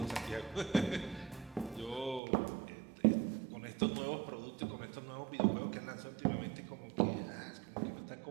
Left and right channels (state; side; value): drops out; left; at 2.2 s